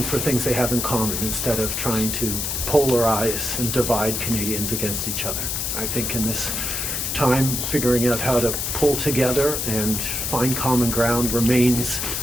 for things they have in common instead of trying to polarize and divide Canadians against each other. I think in this time, figuring out how to pull together and find common ground remains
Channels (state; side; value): noise; left; hiss, 2 dB below the sound